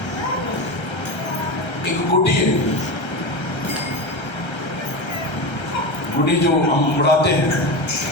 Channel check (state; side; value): late; right; 1.3 ms